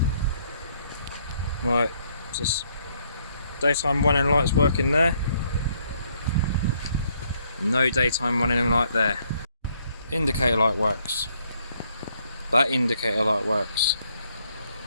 Right, just daytime running lights working there. No daytime running light there. Indicator light works. That indicator light works.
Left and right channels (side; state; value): both; inverted; correlation -0.69